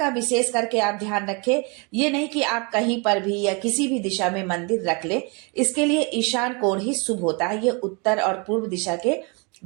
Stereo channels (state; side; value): quieter; left; 31.9 dB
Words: विशेष करके आप ध्यान रखें। ये नहीं कि आप कहीं पर भी या किसी भी दिशा में मंदिर रख ले। इसके लिए ईशान कोण ही शुभ होता है। ये उत्तर और पूर्व दिशा के